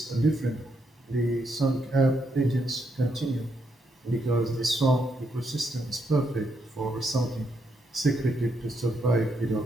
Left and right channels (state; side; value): normal; both; correlation 0.78